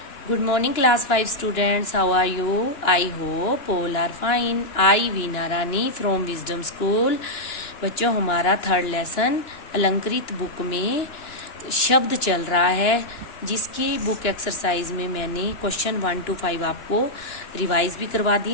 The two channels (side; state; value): right; late; 2.9 ms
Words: Good morning, class 5 students. How are you? I hope all are fine. I Veena Rani from Wisdom School. बच्चों, हमारा third lesson अलंकृत book में शब्द चल रहा है, जिसकी बुक एक्सरसाइज में मैंने क्वेश्चन 1 to 5 आपको रिवाइज भी करवा दिए